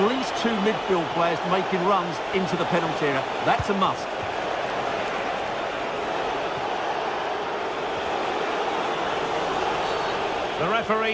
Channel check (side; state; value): both; identical; correlation 1.00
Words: least two midfield players making runs into the penalty area. That's a must. The